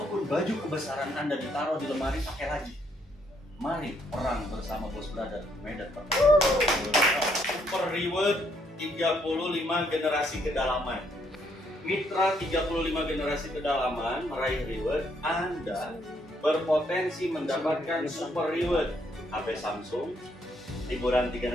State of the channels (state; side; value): normal; both; correlation 0.71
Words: baju kebesaran Anda ditaruh di lemari, pakai lagi. Mari perang bersama Boss Brother Medan Pertempuran. Super Reward 35 generasi kedalaman. Mitra 35 generasi kedalaman meraih reward. Anda berpotensi mendapatkan super reward HP Samsung, liburan